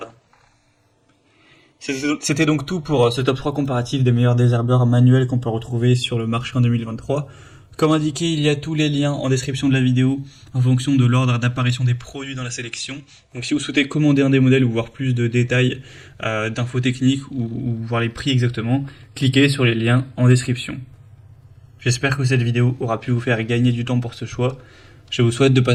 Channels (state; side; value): identical; both; correlation 1.00